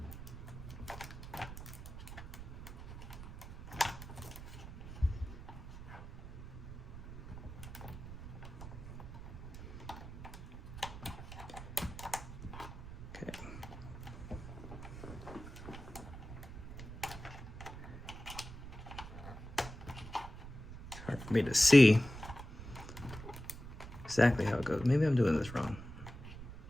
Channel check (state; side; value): noise; right; rumble, 11 dB below the sound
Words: Hard for me to see exactly how it goes. Maybe I'm doing this wrong.